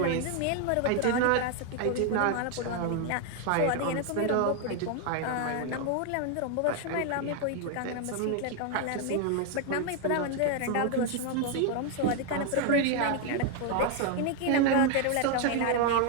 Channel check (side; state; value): both; different; correlation 0.01